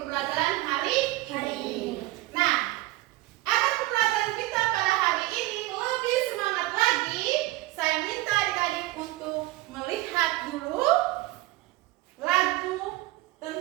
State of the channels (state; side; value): quieter; left; 18.4 dB